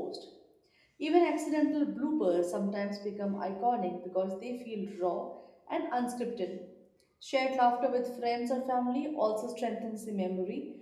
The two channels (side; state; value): both; identical; correlation 1.00